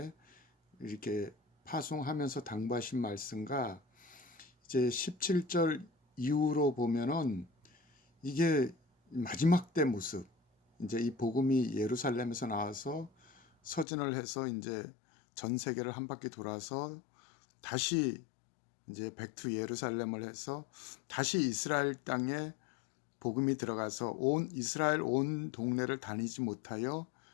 이렇게 파송하면서 당부하신 말씀과 이제 17절 이후로 보면은 이게 마지막 때 모습, 이제 이 복음이 예루살렘에서 나와서 서진을 해서 이제 전 세계를 한 바퀴 돌아서 다시 이제 백투 예루살렘을 해서 다시 이스라엘 땅에 복음이 들어가서 온 이스라엘 온 동네를 다니지 못하여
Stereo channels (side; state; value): right; drops out; at 13.9 s